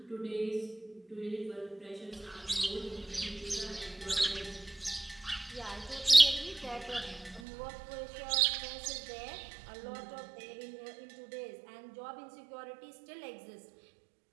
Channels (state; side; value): drops out; left; at 7.4 s